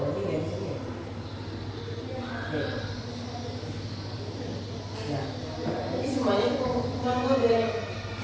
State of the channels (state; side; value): identical; both; correlation 1.00